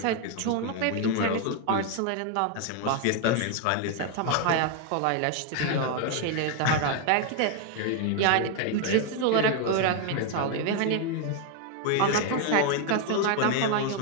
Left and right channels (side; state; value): both; different; correlation 0.01